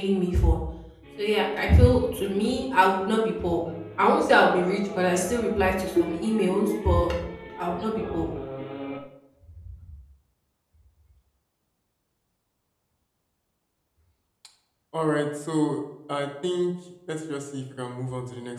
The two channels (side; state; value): both; identical; correlation 1.00